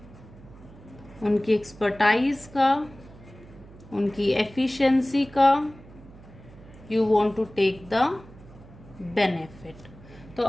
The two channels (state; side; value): noise; right; hum, 21 dB below the sound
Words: उनकी एक्सपर्टाइज का, उनकी एफिशिएंसी का, you want to take the benefit. तो